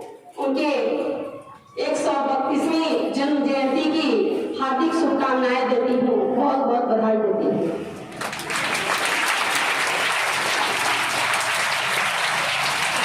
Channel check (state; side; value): identical; both; correlation 1.00